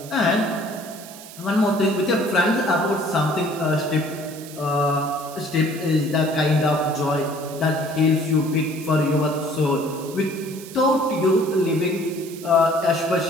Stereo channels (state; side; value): noise; right; hiss, 16 dB below the sound